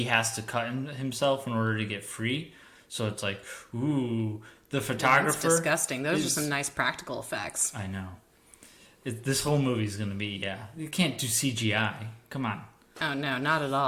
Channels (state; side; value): identical; both; correlation 1.00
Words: has to cut himself in order to get free. So it's like, ooh, the photographer. That's disgusting. Those are some nice practical effects. I know. This whole movie's going to be, you can't do CGI. Come on. Oh, no, not at